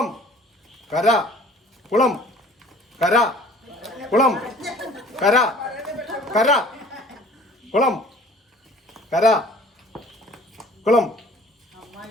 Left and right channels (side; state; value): both; normal; correlation 0.50